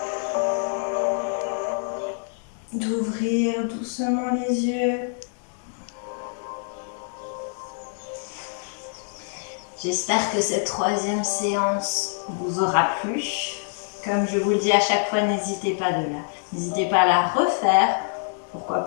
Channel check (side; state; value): right; silent; digital silence